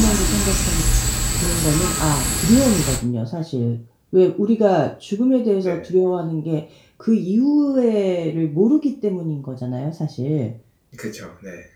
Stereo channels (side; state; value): both; identical; correlation 1.00